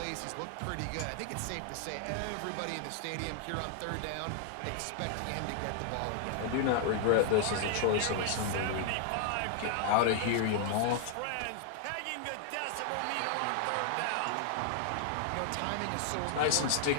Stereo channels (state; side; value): different; both; correlation 0.00